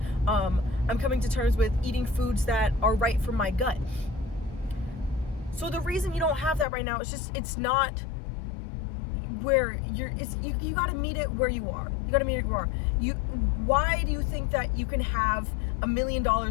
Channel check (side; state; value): right; drops out; at 6.7 s